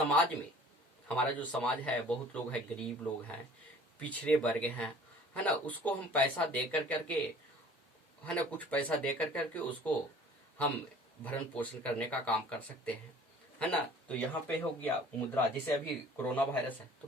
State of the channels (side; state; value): both; normal; correlation 0.49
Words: में, हमारा जो समाज है, बहुत लोग हैं, गरीब लोग हैं, पिछड़े वर्ग हैं, है ना, उसको हम पैसा दे करके, है ना, कुछ पैसा दे करके उसको हम भरण पोषण करने का काम कर सकते हैं, है ना। तो यहाँ पे हो गया मुद्रा। जैसे अभी कोरोना वायरस है, तो